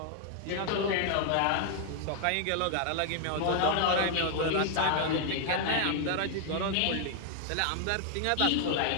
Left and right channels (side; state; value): both; different; correlation 0.00